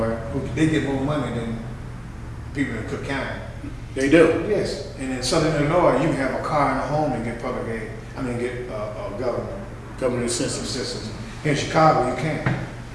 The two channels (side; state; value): both; identical; correlation 1.00